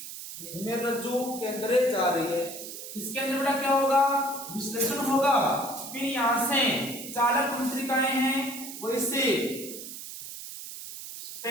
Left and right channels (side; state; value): right; noise; hiss, 10 dB below the sound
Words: मेरुरज्जु के अंदर जा रही है। इसके अंदर बेटा क्या होगा, विश्लेषण होगा। फिर यहां से चालक तंत्रिकाएं हैं वो इससे